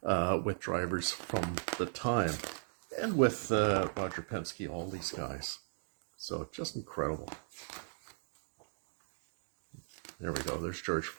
with drivers from the time and with Roger Penske, all these guys. So just incredible. There we go. There's George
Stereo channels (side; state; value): left; silent; digital silence